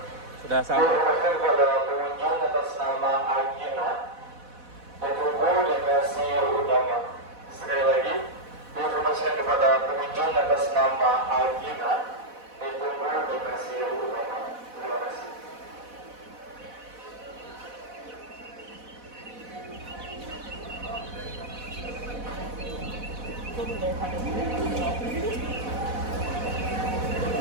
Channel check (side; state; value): left; late; 4.1 ms